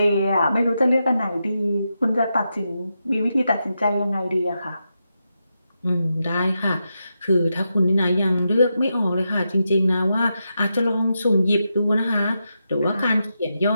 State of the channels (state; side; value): inverted; both; correlation -0.86